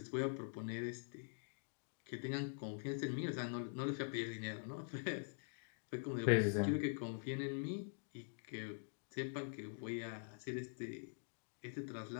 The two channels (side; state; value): right; silent; digital silence